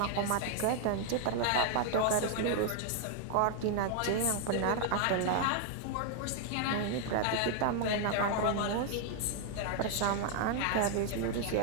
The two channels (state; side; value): different; both; correlation 0.00